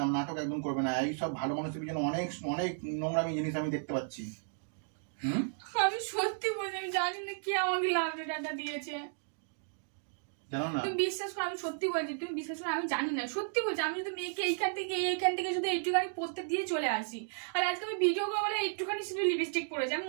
নাটক একদম করবে না। এই সব ভালো মানুষের পিছনে অনেক অনেক নোংরামি জিনিস আমি দেখতে পাচ্ছি। আমি সত্যি বলছি, আমি জানি না কে আমাকে লাভ লেটারটা দিয়েছে। জানো না? তুমি বিশ্বাস করো, আমি সত্যি বলছি, তুমি বিশ্বাস করো, আমি জানি না, সত্যি বলছি। আমি যদি মেয়েকে এইখান থেকে শুধু একটুখানি পড়তে দিয়ে চলে আসি, আর আজকে আমি ভিডিও কলে একটুখানি শুধু লিপস্টিক পরেছি, আমি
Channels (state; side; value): silent; left; digital silence